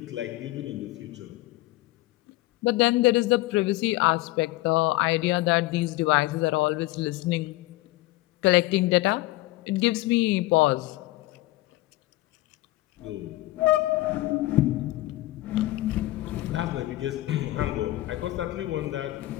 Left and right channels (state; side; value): quieter; right; 18.4 dB